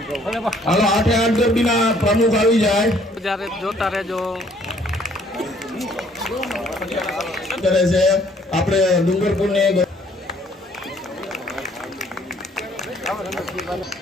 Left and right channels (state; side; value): normal; both; correlation 0.62